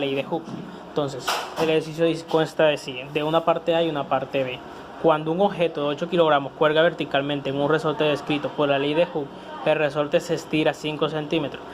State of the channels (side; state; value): both; identical; correlation 1.00